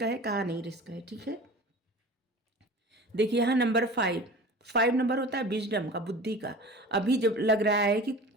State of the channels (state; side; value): normal; both; correlation 0.38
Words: है कहाँ नहीं रिस्क है। ठीक है, देखिए यहाँ नंबर 5 नंबर होता है विजडम का, बुद्धि का। अभी जब लग रहा है कि